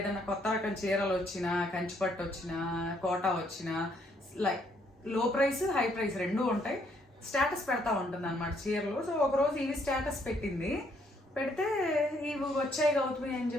కొత్త రకం చీరలు వచ్చినా, కంచిపట్టు వచ్చినా, కోటా వచ్చినా, లైక్ లో ప్రైస్ హై ప్రైస్ రెండూ ఉంటాయి, స్టేటస్ పెడతా ఉంటుంది అనమాట చీరలు. సో ఒకరోజు ఇవి స్టేటస్ పెట్టింది. పెడితే ఇవి వచ్చాయి గౌతమి అని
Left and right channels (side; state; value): both; normal; correlation 0.69